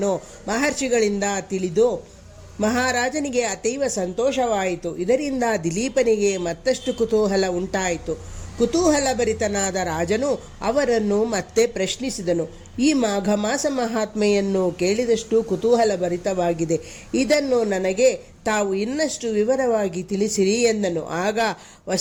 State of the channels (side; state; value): both; identical; correlation 1.00